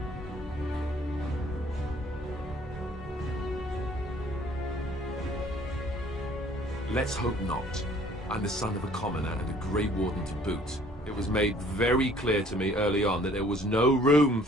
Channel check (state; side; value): normal; both; correlation 0.57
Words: Let's hope not. I'm the son of a commoner and a Grey Warden to boot. It was made very clear to me early on that there was no room